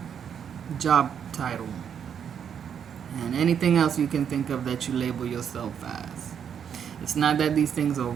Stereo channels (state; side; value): quieter; left; 8.0 dB